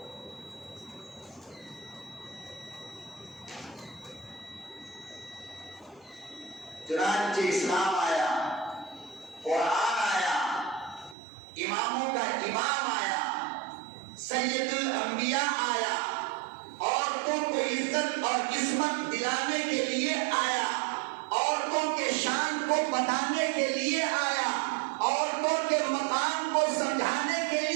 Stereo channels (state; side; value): drops out; left; at 11.2 s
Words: چنانچہ اسلام آیا، قرآن آیا، اماموں کا امام آیا، سید الانبیاء آیا، عورتوں کو عزت اور عصمت دلانے کے لیے آیا، عورتوں کے شان کو بتانے کے لیے آیا، عورتوں کے مقام کو سمجھانے کے